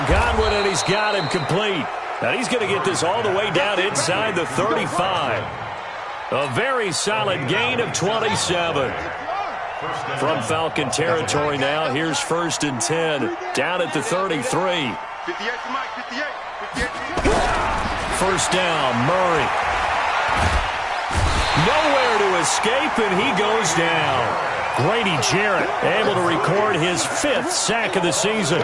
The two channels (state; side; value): identical; both; correlation 1.00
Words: Godwin, and he's got him complete. Now he's going to get this all the way down inside the 35. A very solid gain of 27. From Falcon territory now, here's 1st and 10. Down at the 33. 58. First down, Murray. Nowhere to escape, and he goes down. Grady Jarrett able to record his 5th sack of the season.